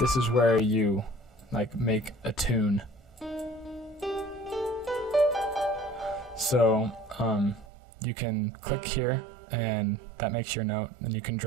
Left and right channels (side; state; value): left; drops out; at 7.7 s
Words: is where you make a tune. So you can click here and that makes your note, and you can